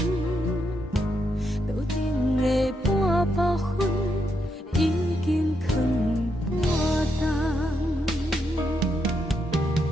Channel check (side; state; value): both; normal; correlation 0.80